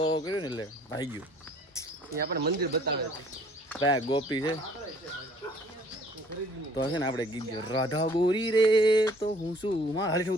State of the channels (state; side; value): normal; both; correlation 0.56